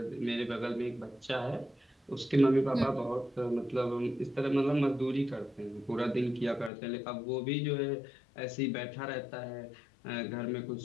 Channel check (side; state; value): right; drops out; at 6.7 s